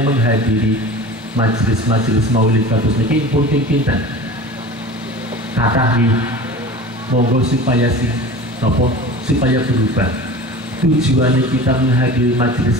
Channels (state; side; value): normal; both; correlation 0.36